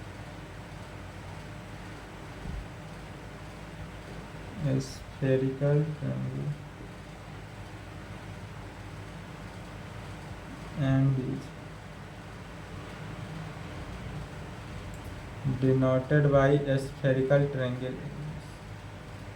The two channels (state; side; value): identical; both; correlation 1.00